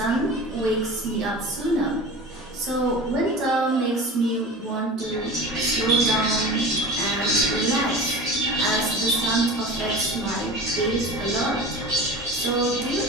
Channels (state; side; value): normal; both; correlation 0.34